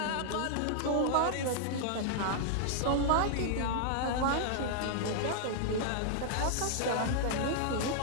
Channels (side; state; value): both; different; correlation -0.01